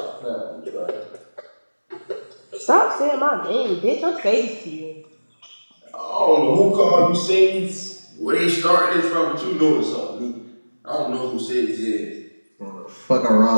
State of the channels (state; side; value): inverted; both; correlation -1.00